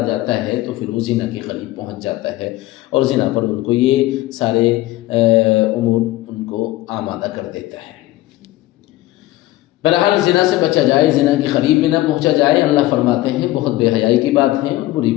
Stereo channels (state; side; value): quieter; right; 16.9 dB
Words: جاتا ہے تو پھر وہ زنا کے قریب پہنچ جاتا ہے، اور زنا پر ان کو یہ سارے امور ان کو آمادہ کر دیتا ہے۔ بہرحال زنا سے بچا جائے، زنا کے قریب بھی نہ پہنچا جائے۔ اللہ فرماتے ہیں بہت بے حیائی کی بات ہے اور بری